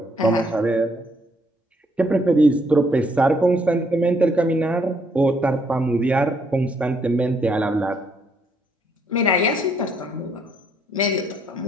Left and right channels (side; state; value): both; normal; correlation 0.69